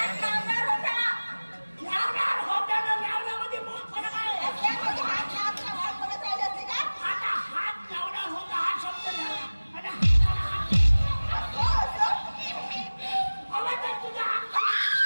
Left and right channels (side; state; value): both; inverted; correlation -1.00